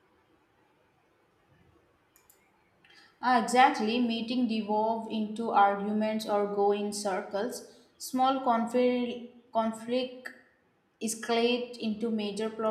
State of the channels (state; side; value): identical; both; correlation 1.00